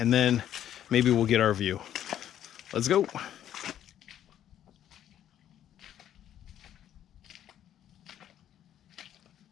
then maybe we'll get our view. Let's go.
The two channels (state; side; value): quieter; right; 10.9 dB